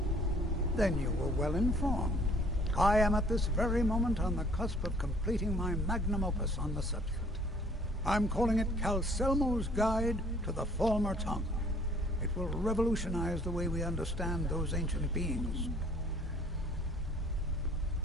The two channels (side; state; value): both; normal; correlation 0.57